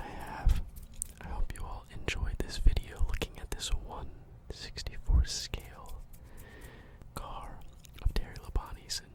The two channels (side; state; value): both; identical; correlation 1.00